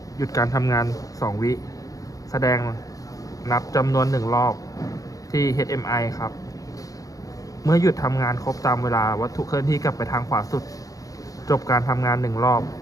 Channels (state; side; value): late; right; 0.17 ms